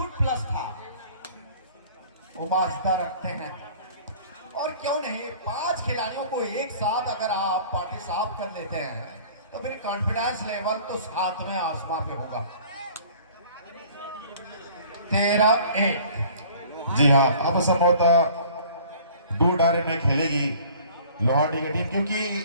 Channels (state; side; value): inverted; both; correlation -0.50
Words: प्लस था। वो माजदा रखते हैं, और क्यों नहीं 5 खिलाड़ियों को एक साथ अगर आप पार्टी साफ कर लेते हैं तो फिर कॉन्फिडेंस लेवल तो 7वें आसमान पे होगा। 13A। जी हाँ, अब संभवतः 2 डायरेक्ट में खेलेगी लोहारडी की टीम, क्योंकि